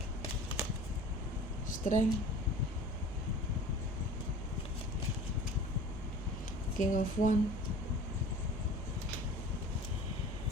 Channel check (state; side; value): normal; both; correlation 0.42